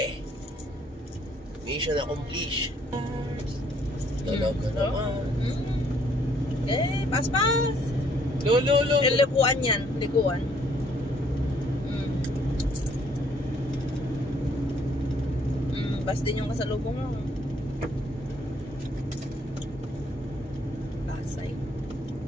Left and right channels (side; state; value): both; normal; correlation 0.64